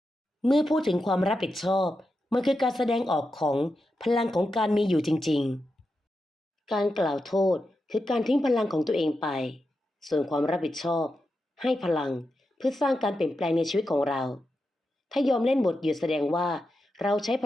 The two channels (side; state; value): both; normal; correlation 0.88